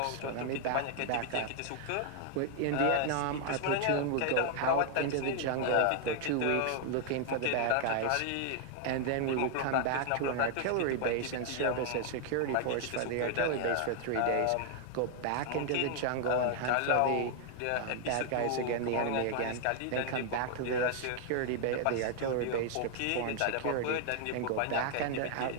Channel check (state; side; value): different; both; correlation 0.00